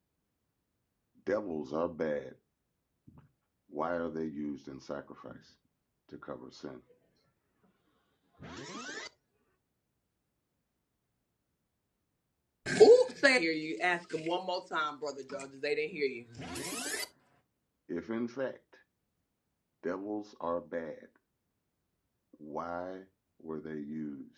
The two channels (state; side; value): identical; both; correlation 1.00